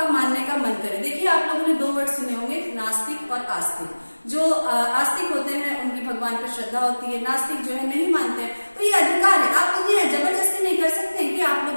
मानने का मन करे। देखिए, आप लोगों ने 2 वर्ड सुने होंगे, नास्तिक और आस्तिक। जो आस्तिक होते हैं उनकी भगवान पर श्रद्धा होती है, नास्तिक जो है नहीं मानते हैं। तो ये अधिकार है, आप उन्हें जबरदस्ती नहीं कर सकते हैं कि आप लोग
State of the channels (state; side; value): inverted; both; correlation -1.00